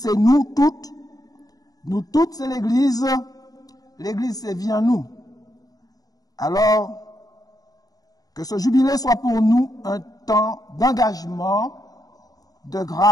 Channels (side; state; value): right; late; 0.18 ms